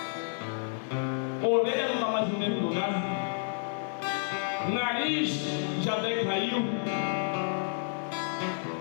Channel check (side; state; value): right; silent; digital silence